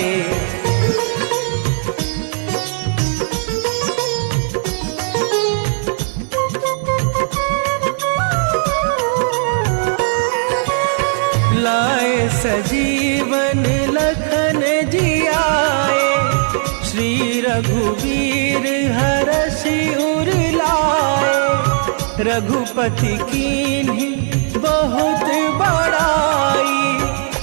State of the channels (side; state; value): left; silent; digital silence